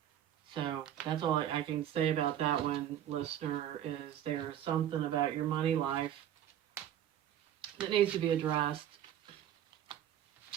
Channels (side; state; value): left; quieter; 11.0 dB